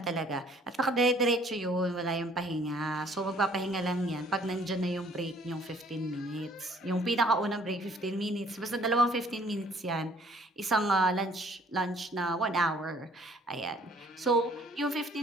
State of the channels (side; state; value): both; normal; correlation 0.59